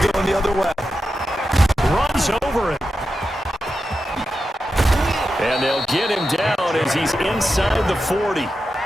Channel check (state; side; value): normal; both; correlation 0.90